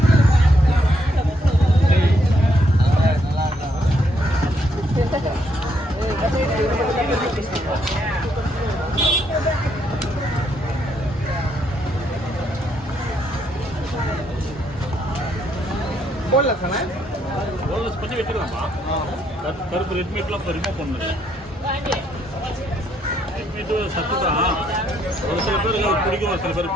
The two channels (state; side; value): normal; both; correlation 0.73